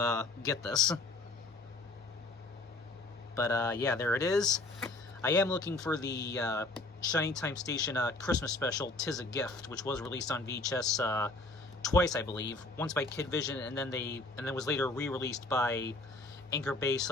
get this. But yeah, there it is. I am looking for the Shining Time Station Christmas special, 'Tis a Gift, which was released on VHS twice, I believe. Once by Kid Vision, and then was later re-released by Anchor Bay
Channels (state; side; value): quieter; right; 3.1 dB